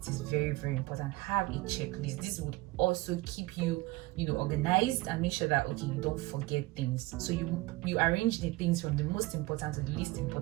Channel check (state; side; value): quieter; left; 20.8 dB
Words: is very, very important. Have a checklist. This would also keep you, you know, organized and make sure that, okay, you don't forget things. So you arrange the things from the most important to the least